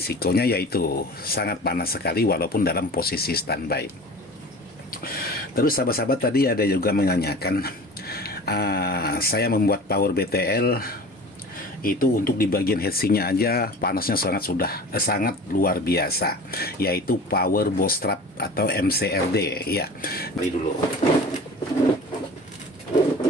yaitu sangat panas sekali walaupun dalam posisi standby. Terus sahabat-sahabat tadi ada juga menanyakan, saya membuat power BTL itu untuk di bagian heatsinknya aja panasnya sangat luar biasa, yaitu power bootstrap atau MCRD. Ya, beli dulu.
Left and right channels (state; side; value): normal; both; correlation 0.38